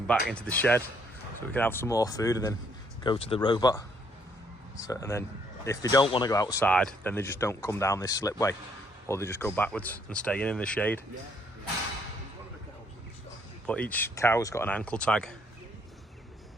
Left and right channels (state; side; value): normal; both; correlation 0.68